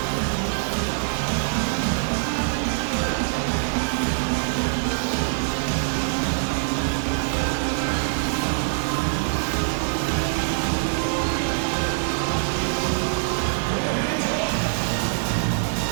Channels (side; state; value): left; silent; digital silence